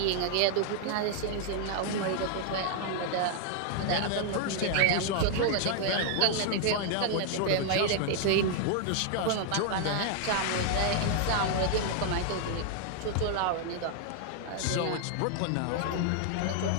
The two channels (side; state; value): both; different; correlation 0.00